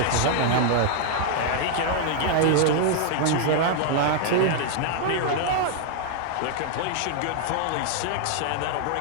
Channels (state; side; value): different; both; correlation 0.00